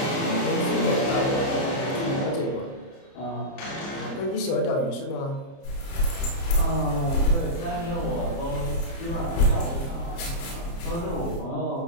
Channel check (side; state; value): right; late; 30 ms